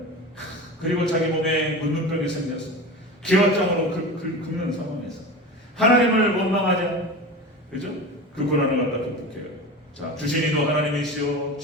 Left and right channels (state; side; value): normal; both; correlation 0.30